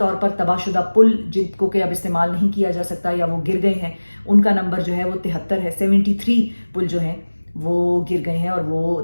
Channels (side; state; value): both; inverted; correlation -1.00